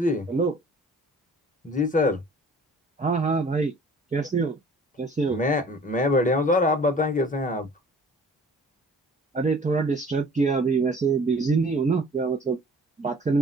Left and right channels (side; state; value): both; normal; correlation 0.49